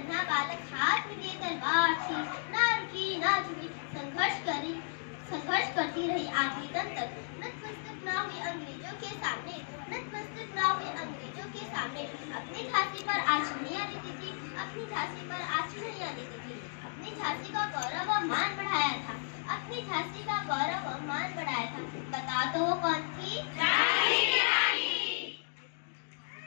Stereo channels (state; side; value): silent; right; digital silence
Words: बालक, हाथ में लिए तलवार थी, ना रुकी ना झुकी, संघर्ष करती रही आखिरी दम तक। नतमस्तक ना हुई अंग्रेजों के सामने, नतमस्तक ना हुई अंग्रेजों के सामने। अपनी झांसी पर आँच नहीं आने देती, अपनी झांसी पर आँच नहीं आने देती। अपनी झांसी का गौरव और मान बढ़ाया था, अपनी झांसी का गौरव और मान बढ़ाया था। बता दो वो कौन थी? झांसी की रानी।